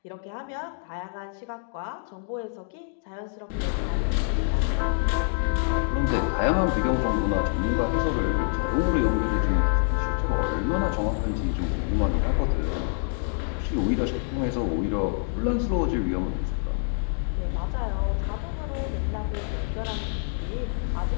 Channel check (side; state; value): right; silent; 61 dB below the other